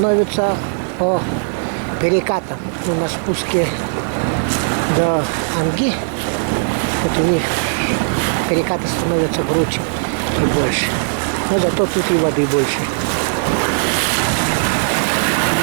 по перекатам. Ну, на спуске до Анги, вот у них перекаты становятся круче и больше. Но зато тут и воды больше.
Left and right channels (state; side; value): silent; left; 67 dB below the other